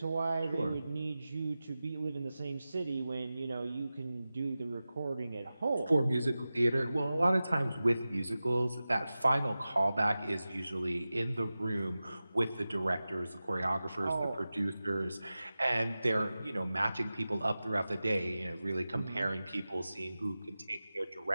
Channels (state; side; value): inverted; both; correlation -0.95